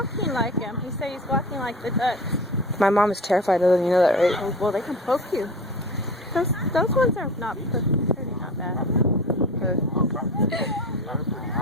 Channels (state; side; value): normal; both; correlation 0.34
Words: like him. He said he's walking like the ducks. My mom is terrified of them. You know that, right? Oh, well, they can poke you. Those ones are not pretty, not bad.